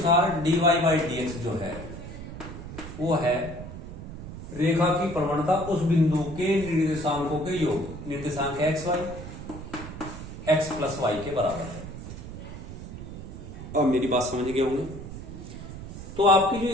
dy बाई dx जो है वो है रेखा की प्रवणता उस बिंदु के निर्देशांकों के योग, निर्देशांक x y x plus Y के बराबर है। अब मेरी बात समझ गए होंगे। तो आपकी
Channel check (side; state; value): right; noise; rumble, 10 dB below the sound